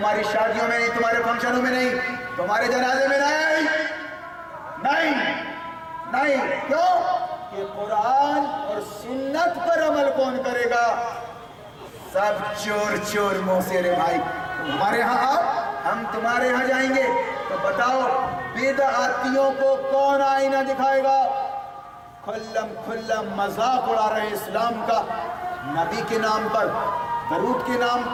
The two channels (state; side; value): identical; both; correlation 1.00